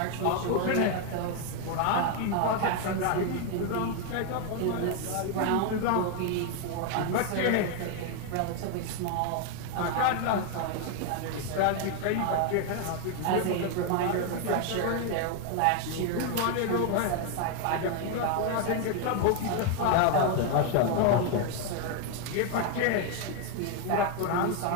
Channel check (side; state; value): both; different; correlation 0.01